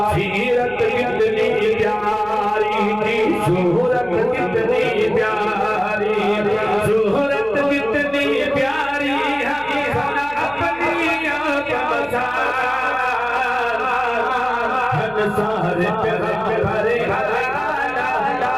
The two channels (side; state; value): left; noise; hum, 21 dB below the sound